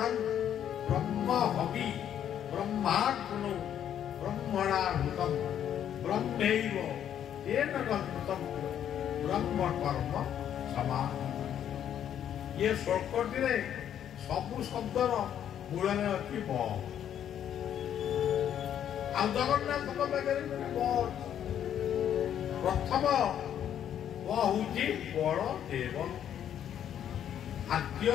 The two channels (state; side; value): quieter; right; 9.9 dB